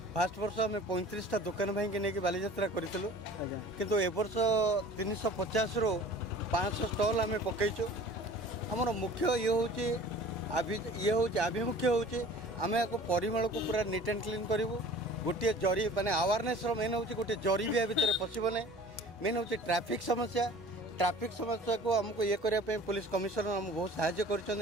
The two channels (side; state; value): both; normal; correlation 0.45